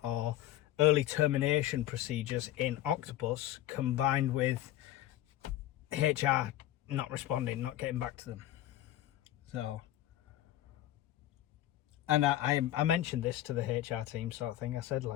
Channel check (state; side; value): quieter; right; 13.7 dB